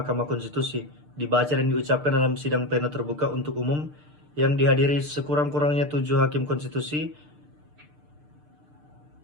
Konstitusi, dibaca dan diucapkan dalam sidang pleno terbuka untuk umum yang dihadiri sekurang-kurangnya 7 hakim konstitusi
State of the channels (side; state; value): left; late; 6.7 ms